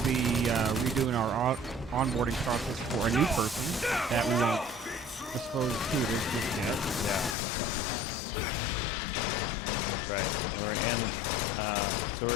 be redoing our onboarding process for a new person that we won't disclose who it is just yet. Yeah. But we should have a... Right. So we're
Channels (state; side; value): drops out; right; at 7.4 s